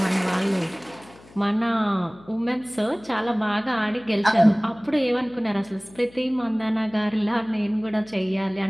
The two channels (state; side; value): noise; left; hum, 24 dB below the sound